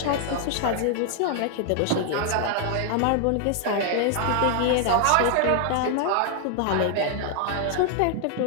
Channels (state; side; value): different; both; correlation 0.00